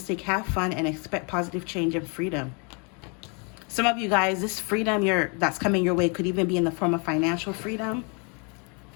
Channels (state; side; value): quieter; right; 34.6 dB